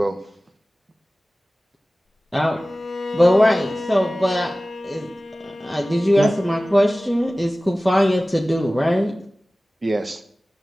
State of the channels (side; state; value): both; normal; correlation 0.97